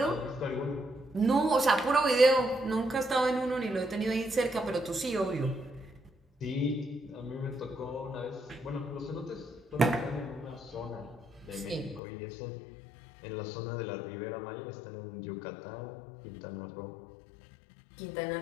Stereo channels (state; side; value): drops out; right; at 12.0 s